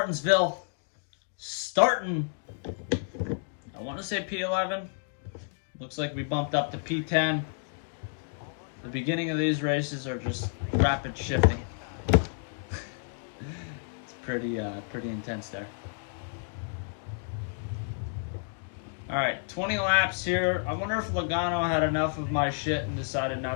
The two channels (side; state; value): right; silent; 58 dB below the other